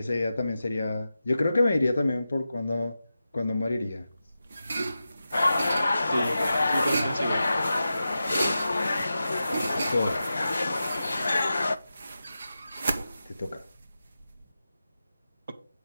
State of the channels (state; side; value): inverted; both; correlation -0.92